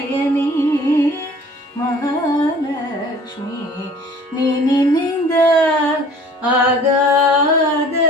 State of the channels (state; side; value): normal; both; correlation 0.50